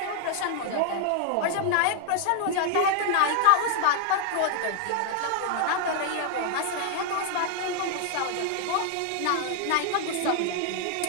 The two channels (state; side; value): different; both; correlation 0.00